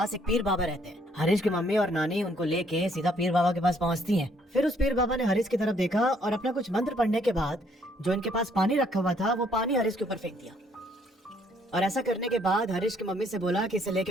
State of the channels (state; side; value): normal; both; correlation 0.67